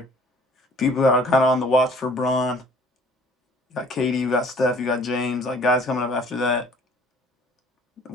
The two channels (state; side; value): normal; both; correlation 0.54